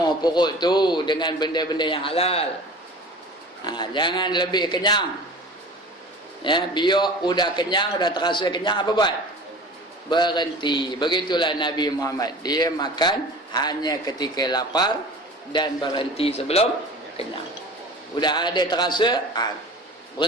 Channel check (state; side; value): normal; both; correlation 0.39